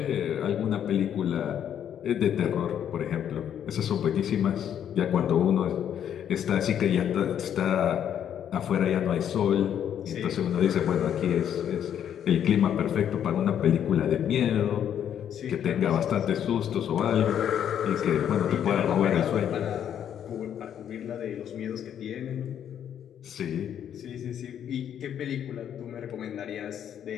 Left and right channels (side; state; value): right; quieter; 9.5 dB